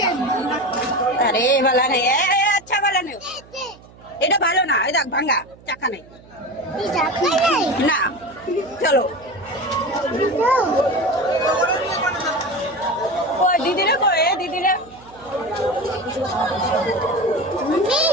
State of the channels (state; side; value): noise; right; hum, 24 dB below the sound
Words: अरे वाला नहीं है अच्छा वाला नहीं এটা ভালো না এই দেখ ভাঙা চাকা নাই না চলো কই দিদি রে কই দিদি রে